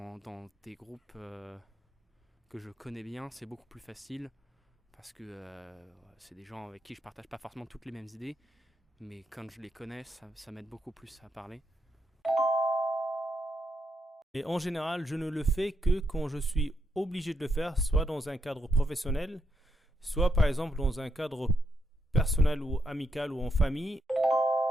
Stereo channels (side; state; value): both; normal; correlation 0.81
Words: des groupes que je connais bien, c'est beaucoup plus facile, parce que c'est des gens avec qui je partage pas forcément toutes les mêmes idées, mais quand je les connais, ça m'aide beaucoup plus à parler. Et en général, je ne le fais que quand je suis obligé de le faire, soit dans un cadre professionnel, soit par exemple dans un cadre personnel ou amical ou en famille.